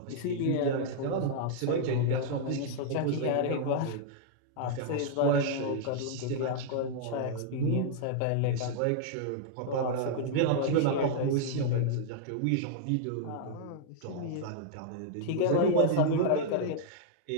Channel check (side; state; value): both; different; correlation -0.01